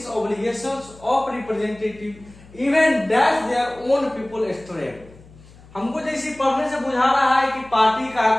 obligations of representative even dash their own people stray। हमको जैसे पढ़ने से बुझा रहा है कि party का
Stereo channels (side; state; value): left; noise; hum, 23 dB below the sound